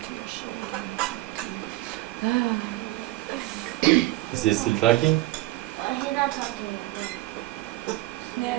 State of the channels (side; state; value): left; quieter; 18.8 dB